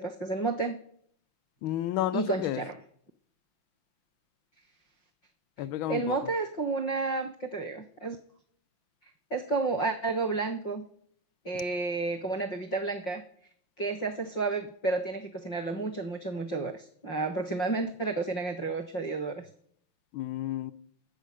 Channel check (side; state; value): right; late; 5.6 ms